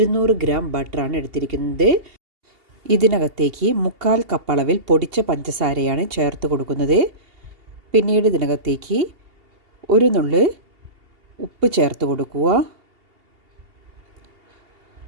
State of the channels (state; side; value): late; left; 2.8 ms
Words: ഗ്രാം ബട്ടറാണ് എടുത്തിരിക്കുന്നത്. ഇതിനകത്തേക്ക് 1/4 കപ്പ് അളവിൽ പൊടിച്ച പഞ്ചസാരയാണ് ചേർത്ത് കൊടുക്കുന്നത്. പിന്നീട് ഇതിനകത്തേക്ക് ഒരു നുള്ള് ഉപ്പ് ചേർത്ത് കൊടുക്കുക.